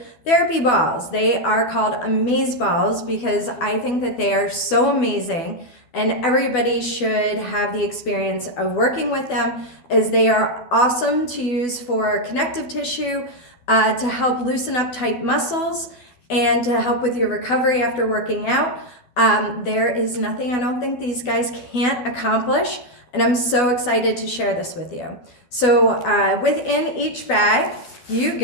therapy balls. They are called A-mazeBalls because I think that they are so amazing, and everybody should have the experience of working with them, as they are awesome to use for connective tissue, to help loosen up tight muscles, and to help with your recovery after working out. There is nothing I don't think these guys can't accomplish, and I'm so excited to share this with you. So within each bag, you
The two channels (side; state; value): right; late; 12 ms